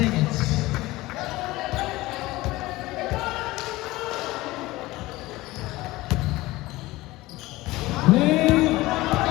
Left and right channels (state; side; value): quieter; right; 19.1 dB